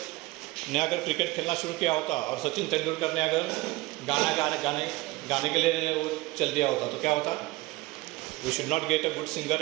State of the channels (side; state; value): left; quieter; 20.7 dB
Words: ने अगर क्रिकेट खेलना शुरू किया होता और सचिन तेंदुलकर ने अगर गाने के लिए वो चल दिया होता, तो क्या होता? We should not get a good